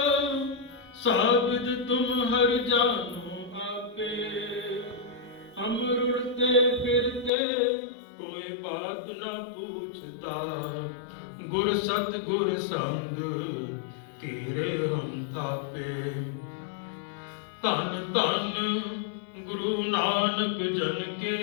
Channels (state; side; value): drops out; right; at 7.3 s